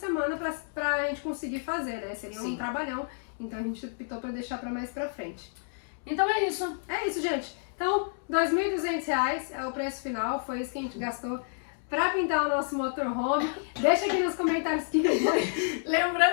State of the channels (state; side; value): silent; right; 58 dB below the other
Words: pra gente conseguir fazer, né? Seria um trabalhão, então a gente optou para deixar para mais pra frente. Então é isso. É isso, gente. Então, R$2.200 é o preço final, foi isso que a gente gastou pra pintar o nosso motorhome. Deixa aqui nos comentários que foi.